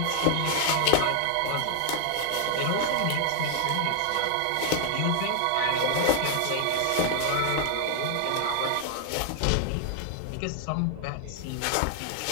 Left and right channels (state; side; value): different; both; correlation 0.00